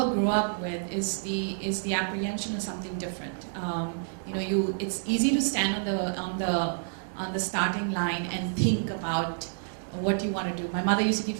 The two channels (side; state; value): left; silent; digital silence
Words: up with is the apprehension of something different. It's easy to stand on the starting line and think about what you want to do. My mother used to